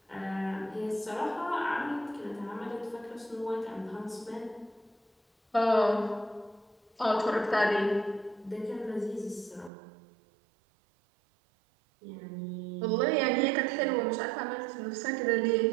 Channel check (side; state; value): left; drops out; at 9.7 s